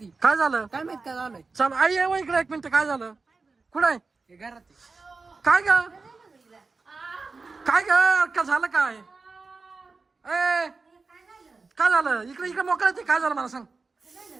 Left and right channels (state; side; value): quieter; left; 4.1 dB